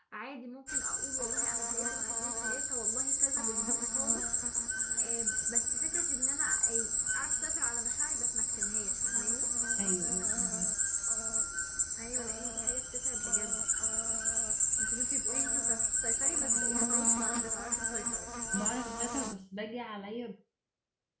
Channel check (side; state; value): both; identical; correlation 1.00